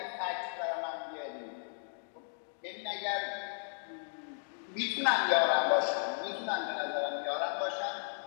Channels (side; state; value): right; silent; digital silence